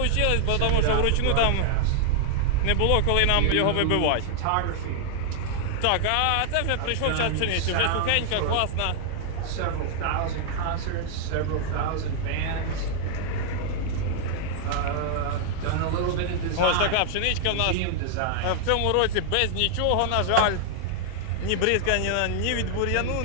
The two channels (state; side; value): different; both; correlation 0.00